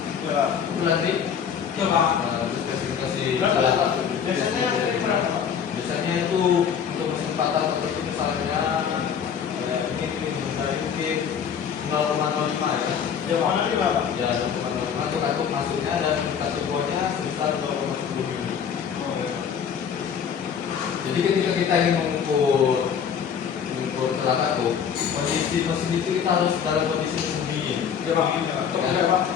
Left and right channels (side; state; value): right; quieter; 7.6 dB